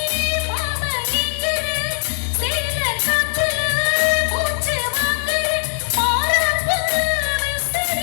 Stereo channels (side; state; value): right; silent; digital silence